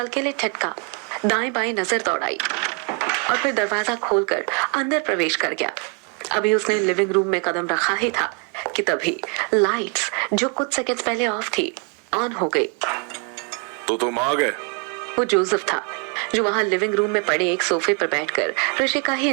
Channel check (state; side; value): quieter; left; 36.3 dB